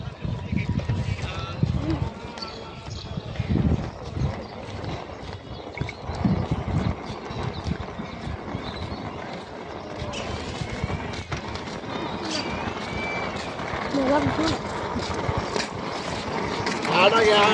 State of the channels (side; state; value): both; identical; correlation 1.00